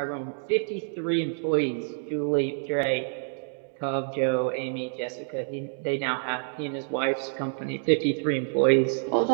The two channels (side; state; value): left; silent; digital silence